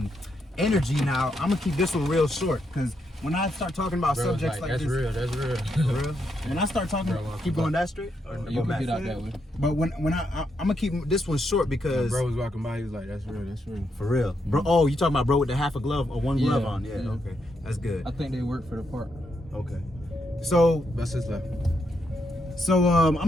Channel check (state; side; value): normal; both; correlation 0.80